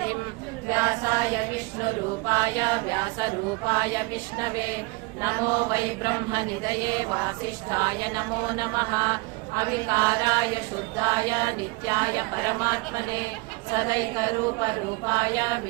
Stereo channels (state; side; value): quieter; left; 25.2 dB